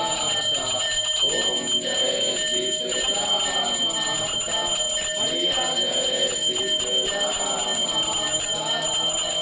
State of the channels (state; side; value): identical; both; correlation 1.00